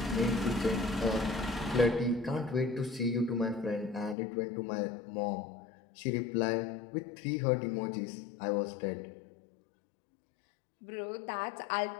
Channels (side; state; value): right; drops out; at 4.2 s